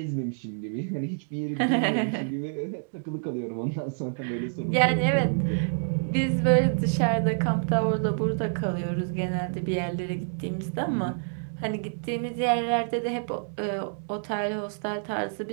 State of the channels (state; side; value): silent; left; digital silence